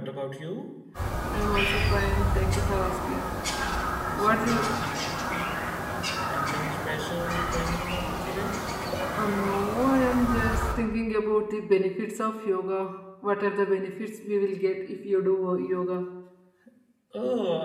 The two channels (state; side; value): identical; both; correlation 1.00